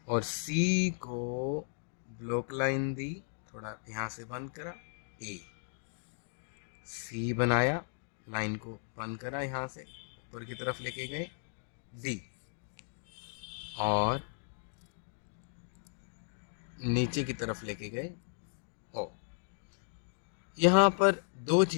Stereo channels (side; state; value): right; silent; digital silence